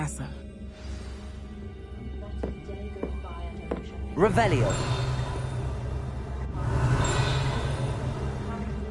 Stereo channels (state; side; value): identical; both; correlation 1.00